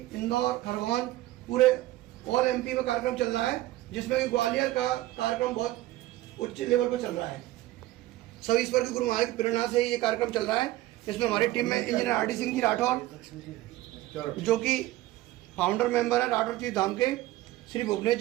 इंदौर, खरगोन, पूरे ऑल MP में कार्यक्रम चल रहा है, जिसमें कि ग्वालियर का कार्यक्रम बहुत उच्च लेवल पर चल रहा है। सब ईश्वर के गुरु महाराज की प्रेरणा से ये कार्यक्रम चल रहा है। इसमें हमारी टीम में इंजीनियर RD सिंह जी राठौर, जो कि फाउंडर मेंबर है राठौर चीज धाम के, श्री भुवनेश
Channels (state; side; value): quieter; left; 16.5 dB